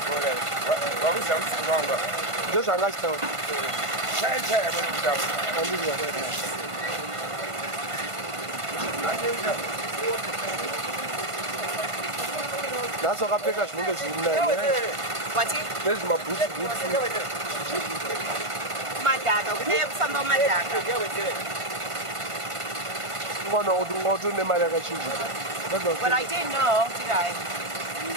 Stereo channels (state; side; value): late; left; 1.5 ms